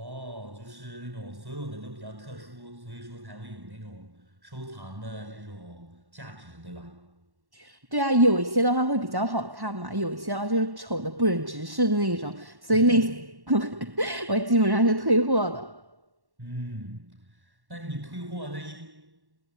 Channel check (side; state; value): left; late; 1.1 ms